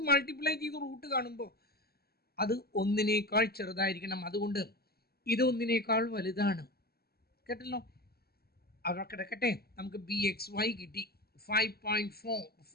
മൾട്ടിപ്ലൈ ചെയ്ത് റൂട്ട് കാണുമ്പോൾ അത് ഒന്നിനേക്കാൾ ചെറുതായിരിക്കണം. അതുകൊണ്ട് ഇത് ഒന്നിനേക്കാൾ വലുതാണ്. കേട്ടല്ലോ, അവിടെ കിടക്കട്ടെ. നമുക്ക് ബി എക്സ് വൈ കിട്ടി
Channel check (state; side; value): late; right; 0.46 ms